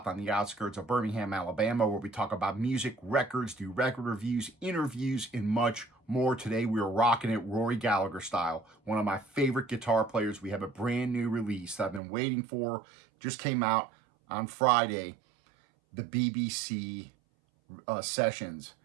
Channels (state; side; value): drops out; left; at 12.0 s